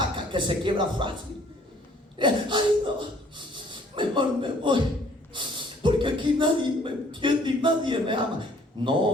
que se quiebra fácil. Ay, no, mejor me voy, porque aquí nadie me entiende y nadie me ama.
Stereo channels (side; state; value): both; normal; correlation 0.58